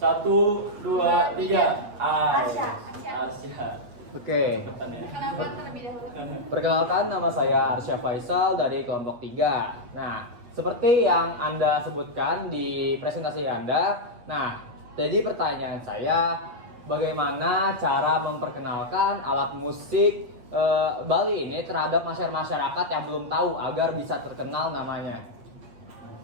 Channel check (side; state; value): left; late; 8.3 ms